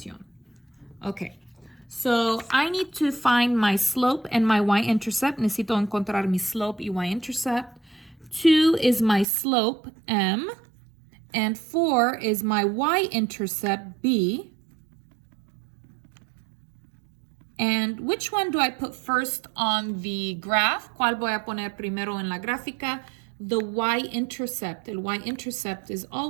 Okay. So I need to find my slope and my y-intercept. Necesito encontrar mi slope y y-intercept. 2 is my slope, M. And 4 is my y-intercept, B. And which one do I put first on the graph? ¿Cuál voy a poner primero en la gráfica? The y-intercept. El y-intercept is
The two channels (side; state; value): left; drops out; at 9.2 s